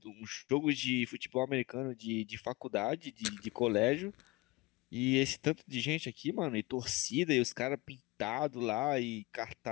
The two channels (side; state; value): right; quieter; 22.4 dB